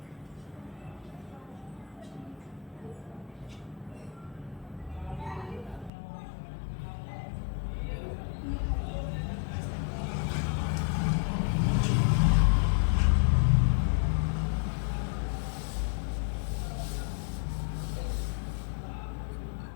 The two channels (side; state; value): right; drops out; at 5.9 s